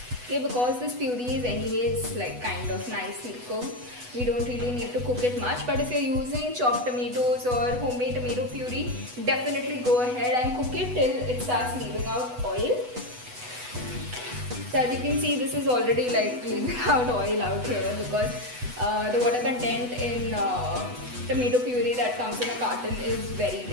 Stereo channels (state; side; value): late; left; 8.1 ms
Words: Okay, because this puree is anyways like kind of nicely cooked, we don't really need to cook it much. But if you're using chopped tomatoes or homemade tomato puree, definitely go ahead and cook it till it starts leaving out oil. So as you can see, this is already like leaving out oil out here because the water content in tomato puree that comes in a carton is very